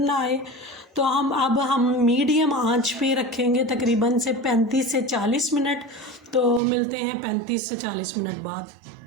आए। तो हम मीडियम आंच पे रखेंगे तकरीबन से 35 से 40 मिनट। तो मिलते हैं 35 से 40 मिनट बाद।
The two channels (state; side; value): drops out; left; at 6.6 s